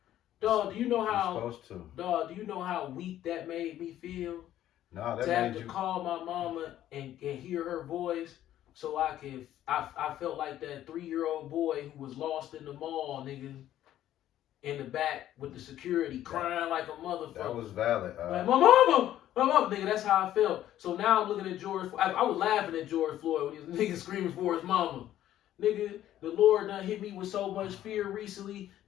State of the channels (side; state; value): right; quieter; 12.4 dB